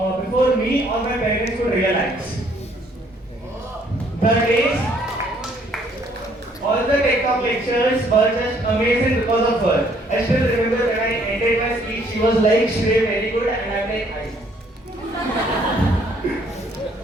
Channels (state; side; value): normal; both; correlation 0.64